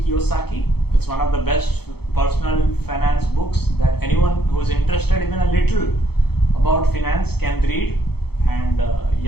Kiyosaki. It's one of the best personal finance books that anyone who is interested even a little about finance can read. And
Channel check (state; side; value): late; right; 0.96 ms